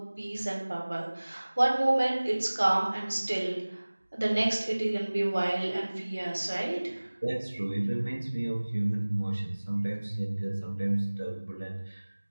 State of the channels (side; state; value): both; inverted; correlation -1.00